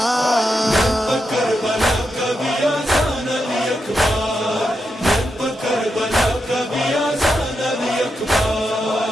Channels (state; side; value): normal; both; correlation 0.85